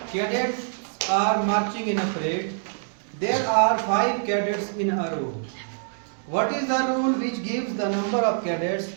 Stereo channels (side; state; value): left; silent; digital silence